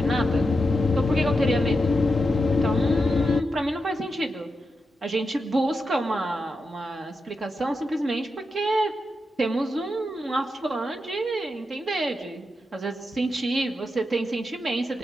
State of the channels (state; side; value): normal; both; correlation 0.87